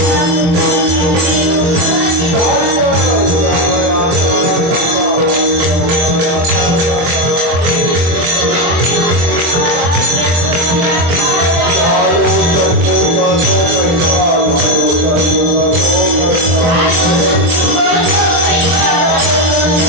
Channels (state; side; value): late; left; 24 ms